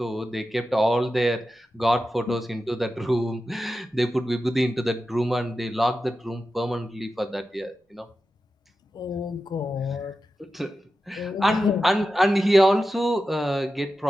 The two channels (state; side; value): normal; both; correlation 0.92